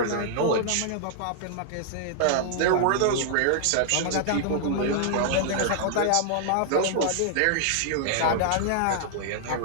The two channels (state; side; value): different; both; correlation -0.01